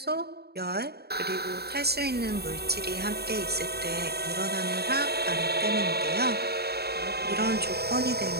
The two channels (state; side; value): late; left; 0.47 ms